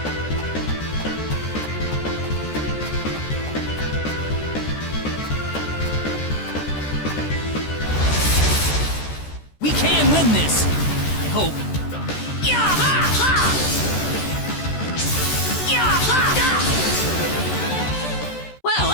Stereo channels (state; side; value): late; right; 14 ms